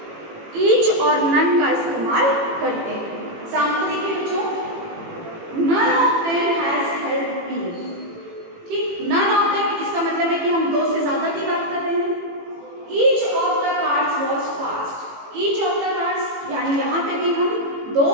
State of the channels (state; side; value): late; left; 18 ms